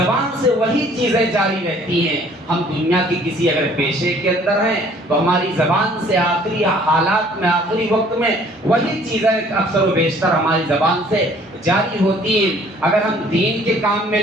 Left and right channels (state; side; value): normal; both; correlation 0.56